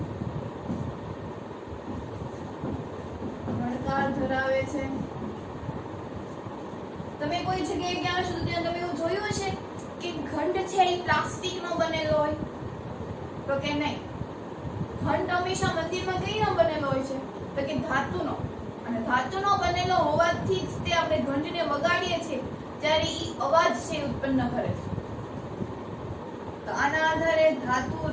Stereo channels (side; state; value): both; identical; correlation 1.00